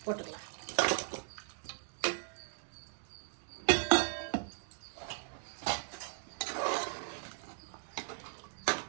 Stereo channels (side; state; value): left; silent; digital silence